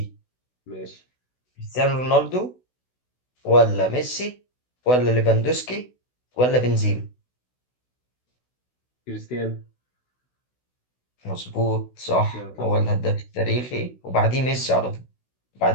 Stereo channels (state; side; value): late; right; 16 ms